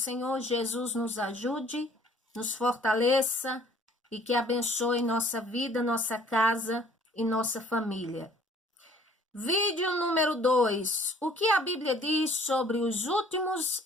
Jesus nos ajude, nos fortaleça e que abençoe nossa vida, nossa casa e nossa família. Vídeo número 2. O que a Bíblia diz sobre os últimos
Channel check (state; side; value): normal; both; correlation 0.56